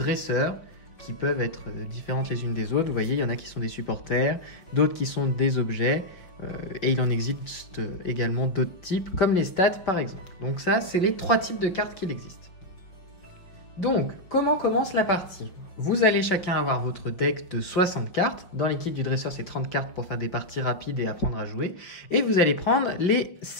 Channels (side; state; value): right; late; 5.4 ms